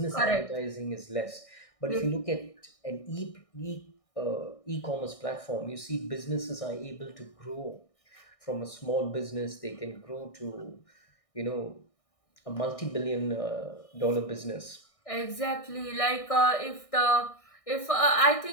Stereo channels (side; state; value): right; late; 1.6 ms